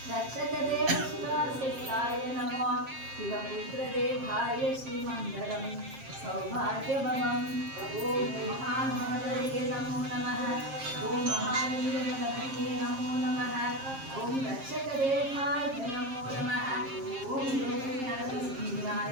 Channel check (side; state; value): left; late; 7.5 ms